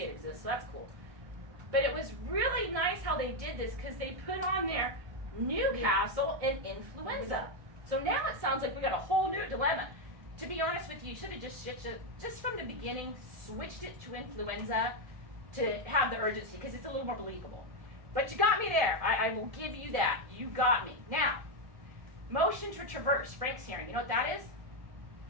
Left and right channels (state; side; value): late; left; 1.7 ms